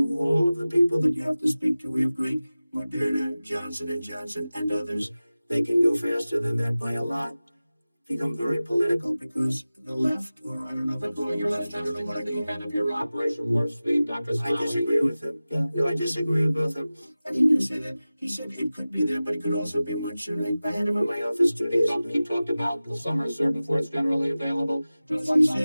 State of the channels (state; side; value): inverted; both; correlation -0.97